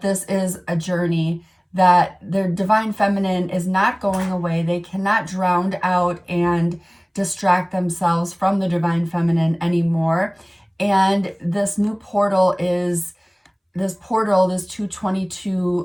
this is a journey, that their divine feminine is not going away. They cannot drown out and distract themselves from the divine feminine anymore. And this new portal is this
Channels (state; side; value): identical; both; correlation 1.00